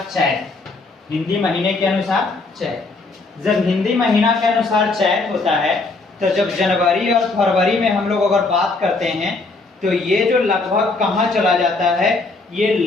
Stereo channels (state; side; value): quieter; right; 3.6 dB